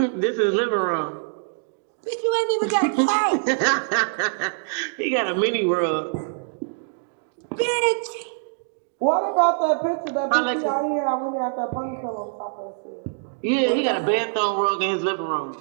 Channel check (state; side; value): silent; left; digital silence